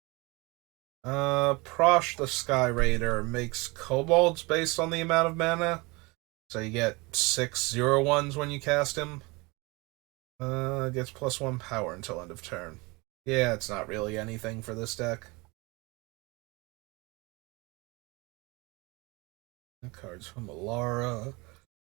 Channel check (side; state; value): left; quieter; 25.7 dB